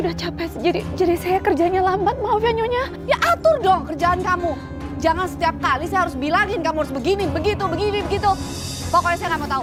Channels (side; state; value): both; identical; correlation 1.00